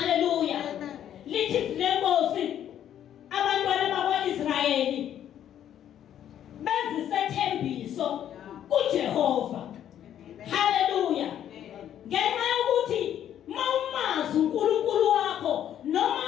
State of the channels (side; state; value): right; quieter; 10.5 dB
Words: Amen. Lithi izwi lenkosi, abantwana bakwa-Israyeli benza isethembiso kuJehova. Hallelujah. Ngenxa yokuthi mawumazi uNkulunkulu wakho noma